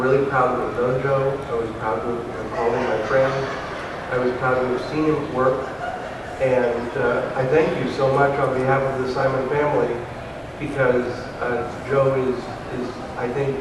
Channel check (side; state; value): both; identical; correlation 1.00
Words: proud to have known Joe. I was proud to have called him my friend. I was proud to have seen him work. And I thank you so much on behalf of the Simon family, because Joe is, I think,